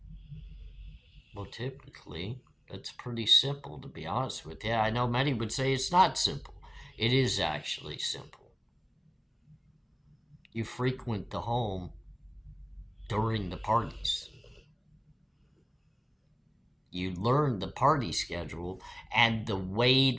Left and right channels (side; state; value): both; identical; correlation 1.00